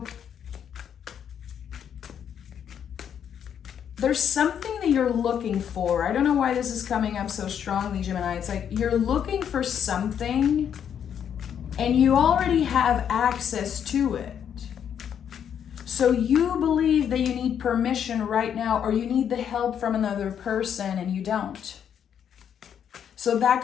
there's something that you're looking for. I don't know why this is coming up so strongly, Gemini. It's like you're looking for something and you already have access to it. So you believe that you need permission right now, or you need the help from another person and you don't. So that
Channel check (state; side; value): quieter; right; 8.6 dB